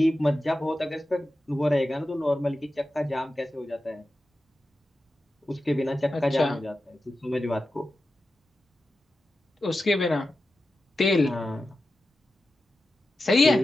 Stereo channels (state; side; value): normal; both; correlation 0.92